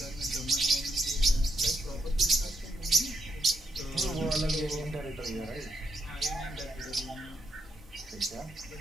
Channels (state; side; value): normal; both; correlation 0.79